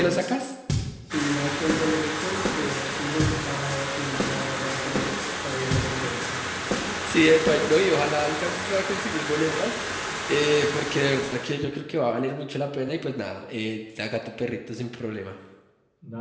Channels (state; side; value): identical; both; correlation 1.00